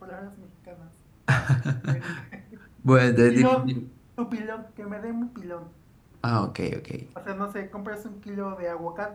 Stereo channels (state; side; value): identical; both; correlation 1.00